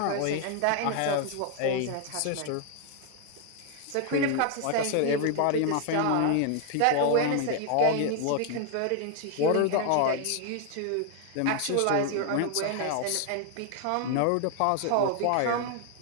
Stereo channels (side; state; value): both; different; correlation 0.00